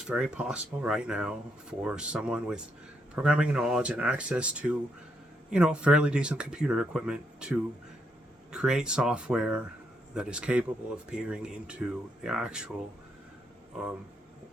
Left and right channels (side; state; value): both; normal; correlation 0.77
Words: very possible right now for someone with programming knowledge and access to, fairly decent computer equipment to create software that is capable of peering into the actual